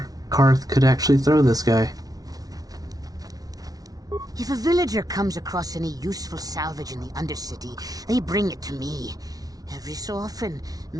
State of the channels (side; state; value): left; late; 0.18 ms